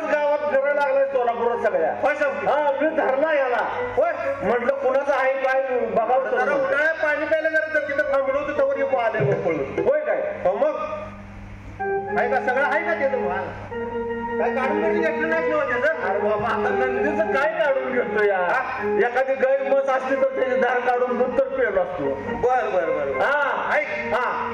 गावात फिरायला लागलाय सोलापुरात सगळ्या. मी धरला याला. होय म्हटलं कुणाचं आहे काय बघावं. उन्हाळ्यात पाणी प्यायला जर तिथं थांबलो होतं तवर येऊ आले होय काय? हो मग आहे का सगळं आहे का त्याचं माल? काय काढून घेतलं नाही त्याचं? अरे बाबा आता नंदीचं काय काढून घेतो या? एखादी गाय मस असली तर त्याची धार काढून दूध तर पेलो असतो. बर बर बर हा ऐक हा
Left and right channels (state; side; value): identical; both; correlation 1.00